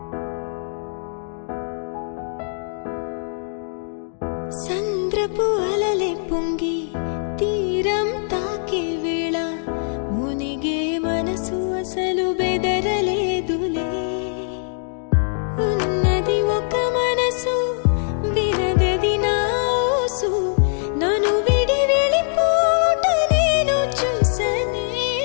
సంద్రపు అలలే పొంగి తీరం తాకే వేళ మునిగే మనసు అసలు బెదరలేదులే ఉన్నది ఒక మనసు వినదది నా ఊసు నన్ను విడి వెళ్ళిపోట నేను చూసనే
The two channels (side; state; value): right; silent; 64 dB below the other